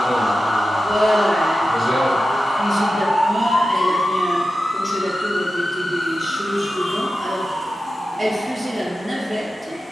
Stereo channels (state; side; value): normal; both; correlation 0.92